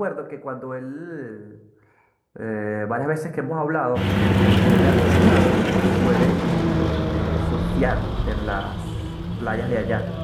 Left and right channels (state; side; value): identical; both; correlation 1.00